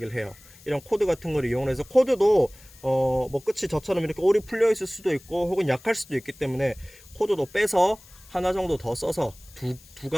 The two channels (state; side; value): noise; left; hiss, 23 dB below the sound